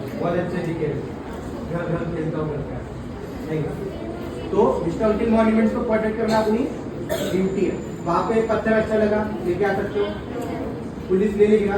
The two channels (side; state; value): both; identical; correlation 1.00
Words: बहुत अच्छे दिखे, घर घर खेलता हूँ करता है नहीं। तो हिस्टोरिकल मॉन्यूमेंट्स को प्रोटेक्ट करना अपनी ड्यूटी है। वहाँ पे पत्थर अच्छा लगा, लेके आ सकते हो, पुलिस ले लेगी ना,